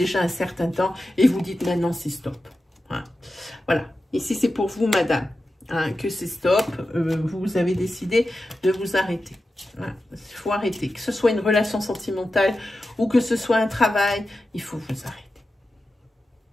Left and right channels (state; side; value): normal; both; correlation 0.92